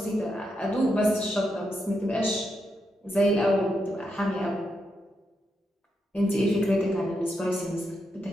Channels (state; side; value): normal; both; correlation 0.83